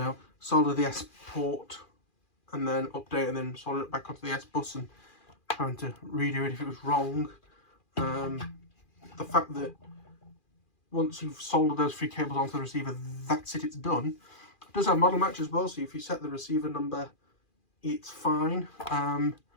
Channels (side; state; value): right; late; 2.4 ms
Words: solder the S port and then update and then solder it back onto the S bus and having to redo it if it was wrong. The fact that once you've soldered those 3 cables onto the receiver, that's it, it's done. It does have model match as well, so if you set the receiver number, it's fine. I